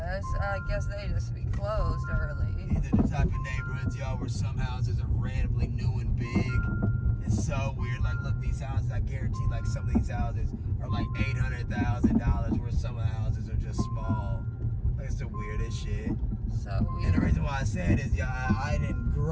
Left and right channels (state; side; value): identical; both; correlation 1.00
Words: guess they just be closed early. These are the type of neighborhoods, y'all, where some houses are randomly new and big. It's so weird. Like, look, these houses, I guarantee, like, some of these houses are like $800,000, where some of the houses are just small. Like, it's the weirdest shit. So weird. And the reason why I said is, yeah, I didn't